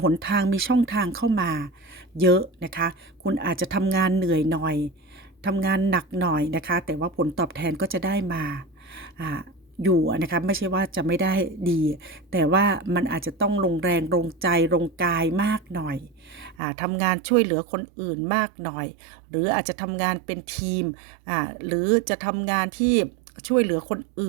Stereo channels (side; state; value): left; drops out; at 16.6 s